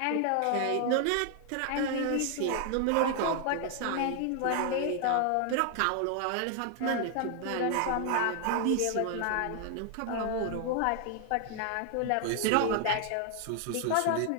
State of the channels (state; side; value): different; both; correlation 0.00